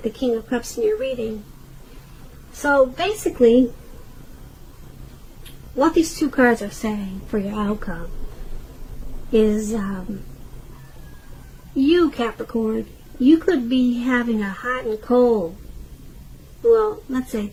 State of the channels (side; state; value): both; identical; correlation 1.00